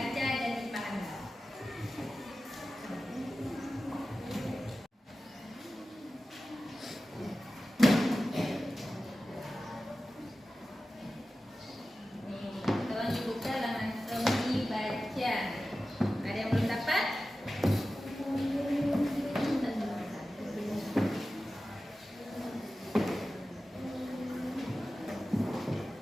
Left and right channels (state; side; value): normal; both; correlation 0.95